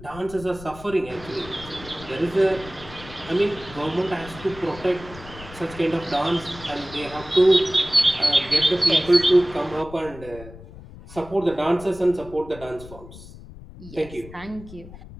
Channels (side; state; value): left; noise; rumble, 17 dB below the sound